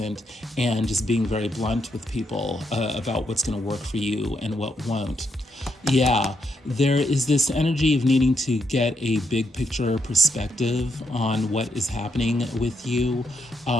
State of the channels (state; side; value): normal; both; correlation 0.78